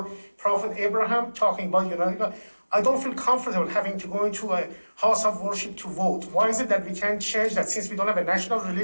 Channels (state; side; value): inverted; both; correlation -1.00